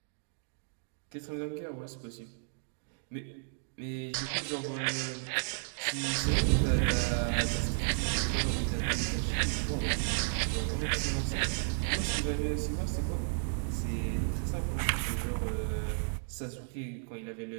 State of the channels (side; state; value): left; silent; digital silence